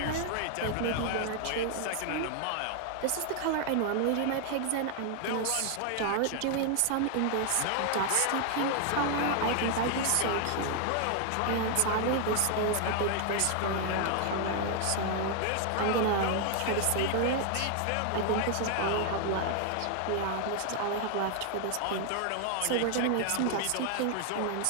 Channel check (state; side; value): different; both; correlation 0.00